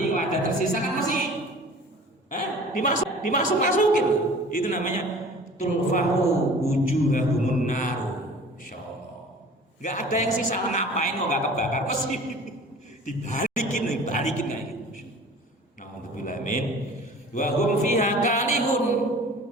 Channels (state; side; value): normal; both; correlation 0.45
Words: kalau ada tersisa kan masih dimasukin itu namanya tulfahu wujuhahumun naru insyaallah nggak ada yang sisa ngapain kok nggak kebakar pasti dibalikin kayak gitu na'udzubillah min wa hum fiha kalihun